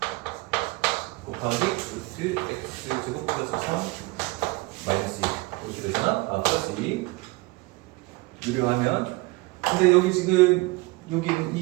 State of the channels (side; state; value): left; quieter; 23.6 dB